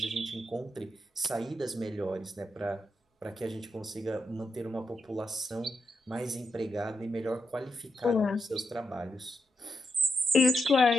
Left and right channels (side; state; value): both; normal; correlation 0.84